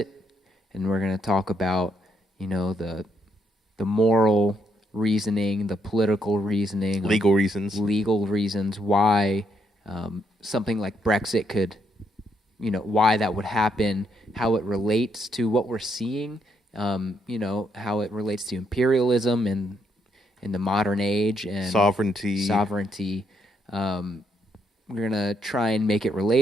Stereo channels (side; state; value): both; normal; correlation 0.76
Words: and we're going to talk about, the moral reasoning, the political reasoning, legal reasons why something like Brexit could, why that would happen, how it relates to what we're seeing, how it relates to imperialism and in the modern age and sovereignty. We're gonna try and make it